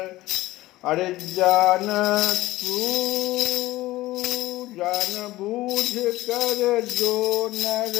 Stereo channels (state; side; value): quieter; right; 17.4 dB